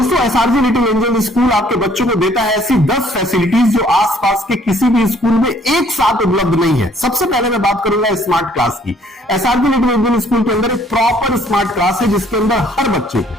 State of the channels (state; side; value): normal; both; correlation 0.61